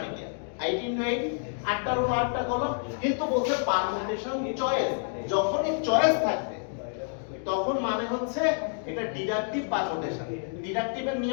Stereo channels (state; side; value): silent; right; digital silence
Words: কি 8 × 8 8টা রো 8টা কলাম। কিন্তু বলছে পারমুটেশন চয়েস, যখনই চয়েস থাকবে তখন মানে হচ্ছে এটা ডিডাকটিভ পারমুটেশন। ডিডাকটিভের